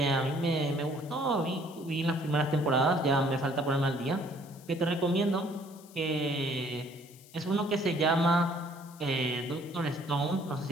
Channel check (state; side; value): noise; left; hiss, 23 dB below the sound